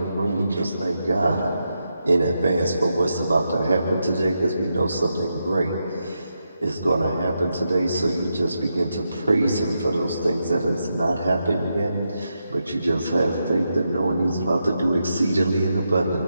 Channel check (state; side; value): inverted; both; correlation -0.85